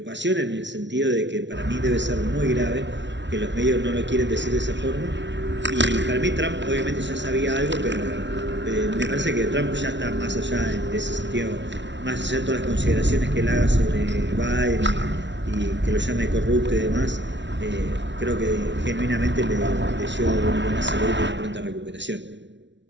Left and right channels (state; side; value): late; left; 0.52 ms